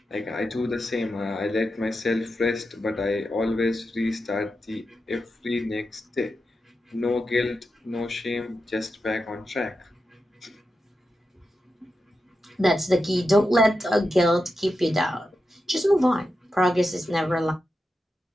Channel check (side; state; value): both; normal; correlation 0.89